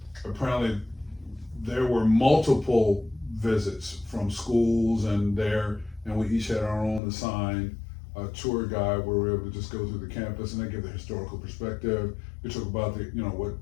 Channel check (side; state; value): right; drops out; at 7.0 s